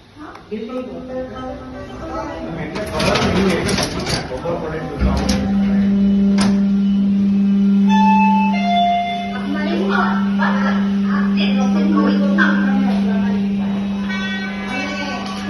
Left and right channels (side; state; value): both; identical; correlation 1.00